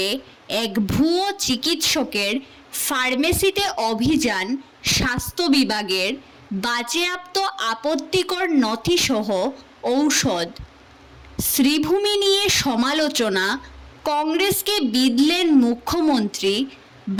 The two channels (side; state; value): both; identical; correlation 1.00